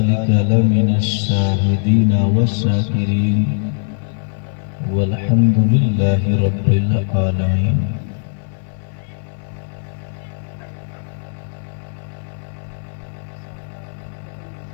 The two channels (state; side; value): silent; right; 59 dB below the other